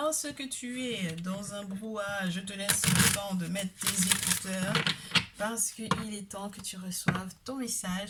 tu es dans un brouhaha, je te laisse le temps de mettre tes écouteurs parce qu'il est temps que tu reçoives ton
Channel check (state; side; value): identical; both; correlation 1.00